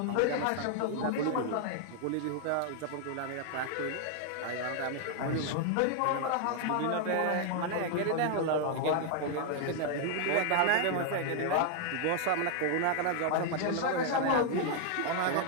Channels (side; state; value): both; different; correlation 0.00